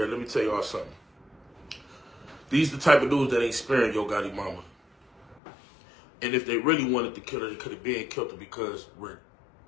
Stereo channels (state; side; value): drops out; right; at 5.4 s